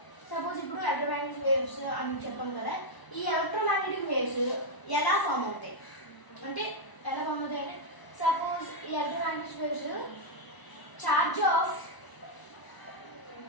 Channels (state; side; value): late; right; 1.0 ms